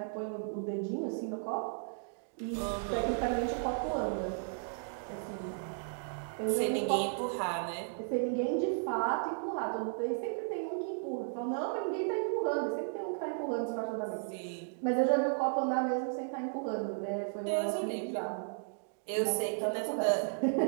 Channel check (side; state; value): left; silent; digital silence